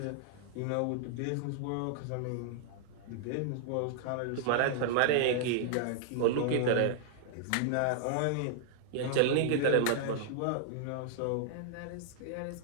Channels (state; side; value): different; both; correlation -0.01